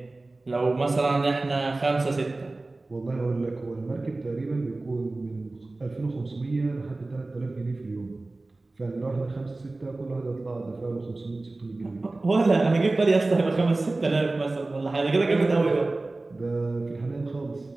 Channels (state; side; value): quieter; left; 3.1 dB